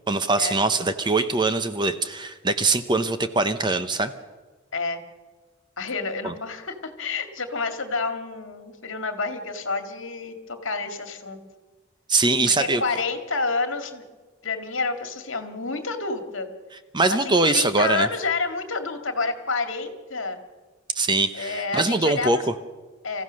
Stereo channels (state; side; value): normal; both; correlation 0.05